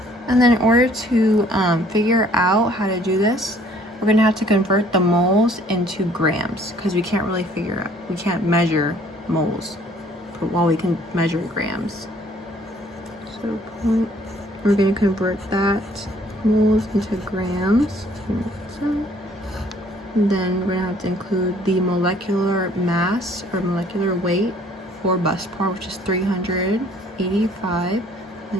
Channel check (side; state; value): both; normal; correlation 0.58